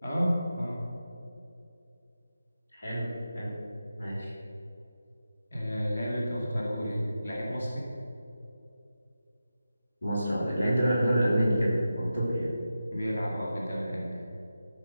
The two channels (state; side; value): inverted; both; correlation -0.91